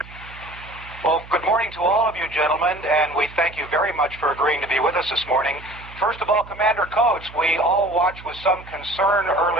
Well, good morning to all of you gentlemen, and we thank you very much for agreeing to be with us this morning. First of all, Commander Coates, we all watched with some concern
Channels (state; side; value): noise; right; hum, 18 dB below the sound